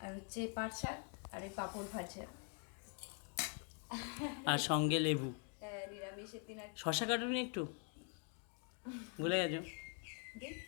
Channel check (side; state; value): right; quieter; 36.3 dB